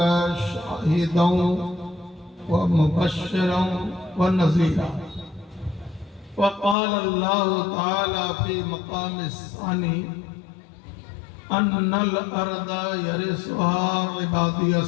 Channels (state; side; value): drops out; right; at 6.8 s